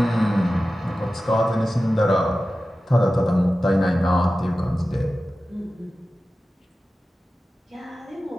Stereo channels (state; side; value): normal; both; correlation 0.94